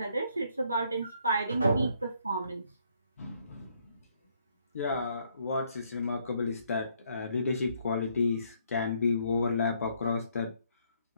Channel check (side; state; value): both; inverted; correlation -0.69